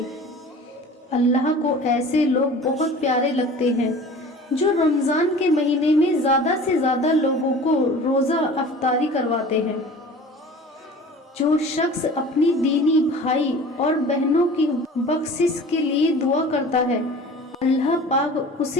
اللہ کو ایسے لوگ بہت پیارے لگتے ہیں جو رمضان کے مہینے میں زیادہ سے زیادہ لوگوں کو روزہ افطاری کرواتے ہیں۔ جو شخص اپنی دینی بھائی اور بہنوں کی بخشش کے لیے دعا کرتا ہے، اللہ پاک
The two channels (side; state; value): both; normal; correlation 0.42